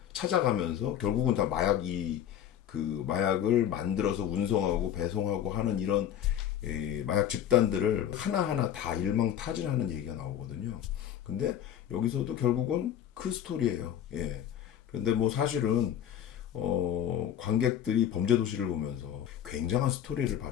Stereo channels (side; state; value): right; quieter; 10.2 dB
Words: 찾아가면서 결국은 다 마약을 만들어서 운송하고 배송하고 하는 이런 마약 집단들을 하나하나 다 일망타진하는 얘기가 나오거든요. 근데 여기서도 결국은 그 스토리예요. 예. 그런데 뭐 사실은 관객들이 범죄도시를 보면서 굉장한 스토리를